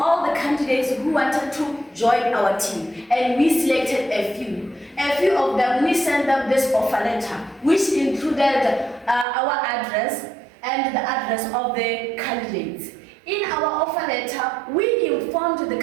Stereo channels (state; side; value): drops out; left; at 9.2 s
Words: the candidates who wanted to join our team, and we selected a few. A few of them, we sent them this offer letter, which included our address and the address of the candidates. In our offer letter, we informed the